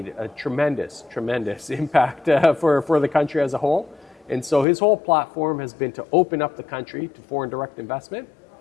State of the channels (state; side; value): drops out; right; at 4.7 s